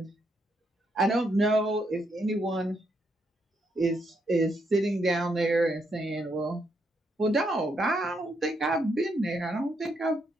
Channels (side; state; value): both; normal; correlation 0.77